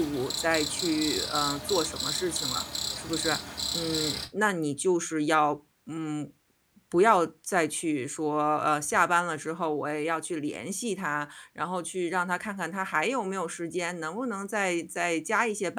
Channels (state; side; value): identical; both; correlation 1.00